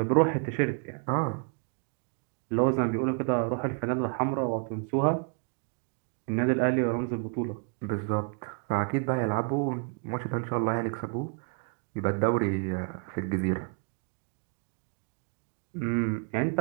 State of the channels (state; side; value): quieter; left; 39.4 dB